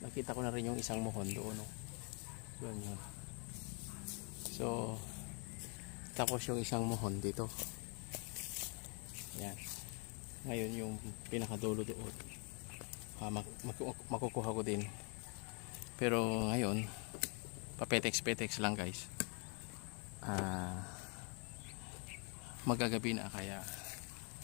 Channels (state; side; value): quieter; right; 35.1 dB